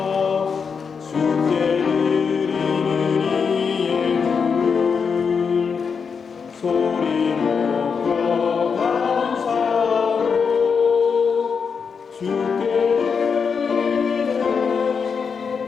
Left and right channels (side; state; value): right; quieter; 5.9 dB